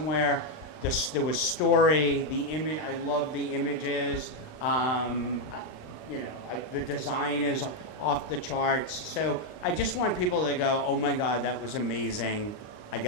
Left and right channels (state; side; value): late; right; 39 ms